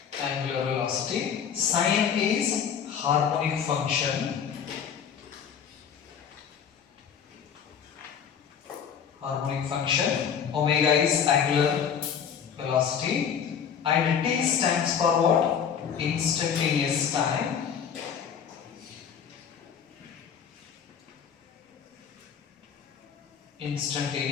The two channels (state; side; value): quieter; right; 7.6 dB